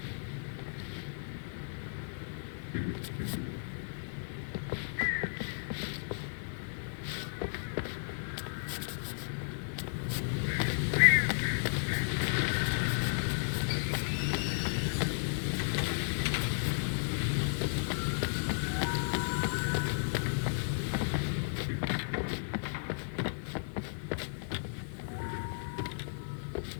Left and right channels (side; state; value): right; silent; digital silence